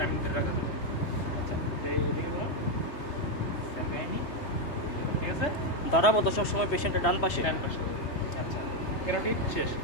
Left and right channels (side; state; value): right; late; 3.1 ms